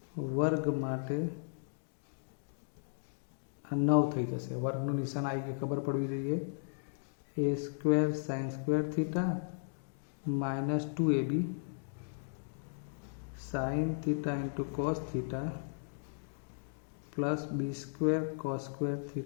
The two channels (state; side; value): silent; right; digital silence